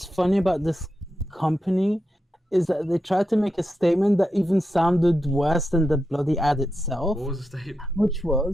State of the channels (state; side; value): normal; both; correlation 0.88